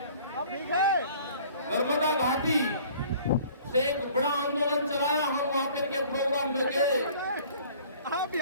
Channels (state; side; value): inverted; both; correlation -0.51